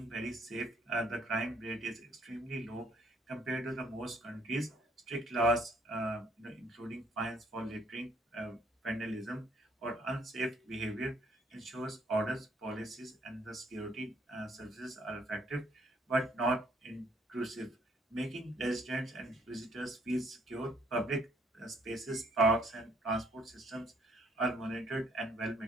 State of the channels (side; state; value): both; normal; correlation 0.65